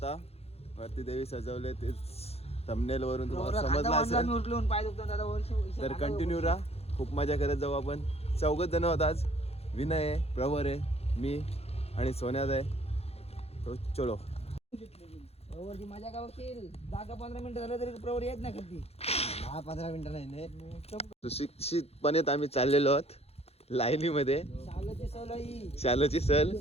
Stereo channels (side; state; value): right; late; 0.29 ms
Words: वरती देवी सजवले, तेच थंबनेल वरून तुम्हाला समजलं असेल. तर कंटिन्यू राहा, खूप मजा करत जाऊ आपण. 4 जण होत आज. विनय आहे, प्रवर आहे, मी आणि सोन्यात आहे. तो चलो प्रवरची मजा का बघशील. जागा 15 मिनिटं झालं तरी प्रवर येत नाही कधी. 10-15 मिनिटं नाही. सुशिक्षितपणे आम्ही चाललेलो आहोत लाईनीमध्ये. शालाची सल.